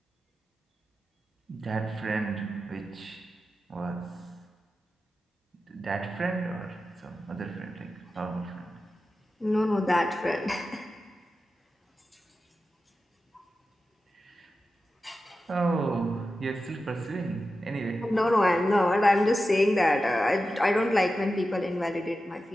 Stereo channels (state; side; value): normal; both; correlation 0.92